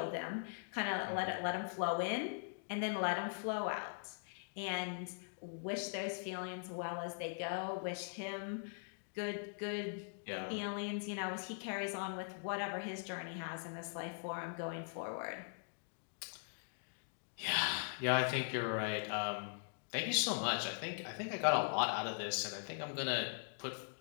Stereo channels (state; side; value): silent; right; digital silence